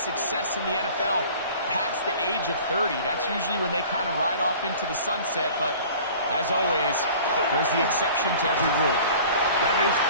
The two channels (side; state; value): both; inverted; correlation -0.46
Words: in the NFL past the age of 30. That's usually when they kind of ride off into the sunset, but as always, there's the exception to every rule. That is